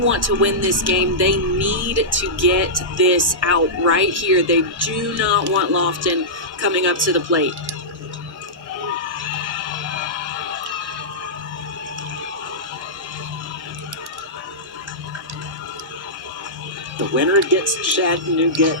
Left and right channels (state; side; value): normal; both; correlation -0.14